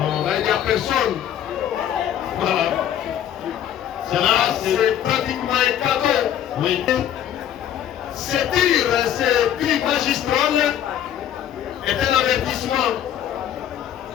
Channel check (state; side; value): quieter; right; 10.6 dB